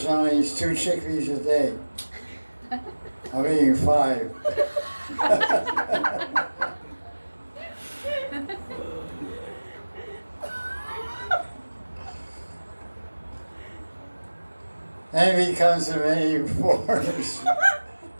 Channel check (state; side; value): inverted; both; correlation -1.00